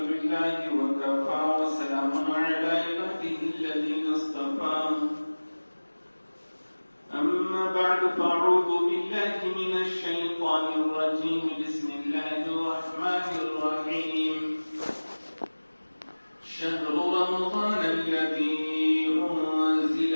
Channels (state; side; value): inverted; both; correlation -1.00